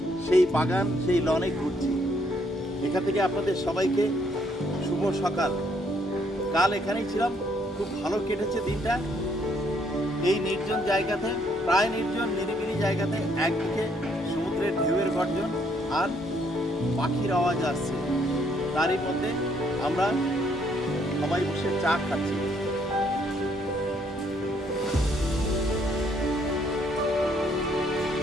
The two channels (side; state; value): both; normal; correlation 0.69